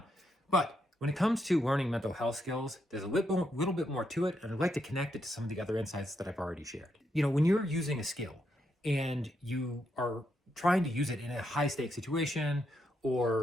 But when it comes to learning mental health skills, there's a little bit more to it, and I'd like to connect it to some of the other insights that I've already shared. When you're using a skill and you are trying to use it in a high stakes situation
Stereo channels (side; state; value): both; normal; correlation 0.80